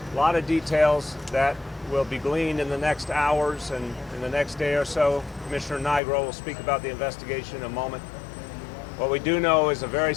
a lot of details that will be gleaned in the next hours and in the next day or so. Commissioner Nigro will speak about the investigation in a moment. What we do know is a very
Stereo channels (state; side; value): drops out; right; at 6.0 s